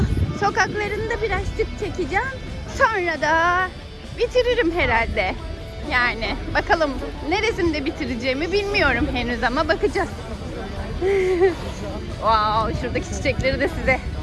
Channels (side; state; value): both; identical; correlation 1.00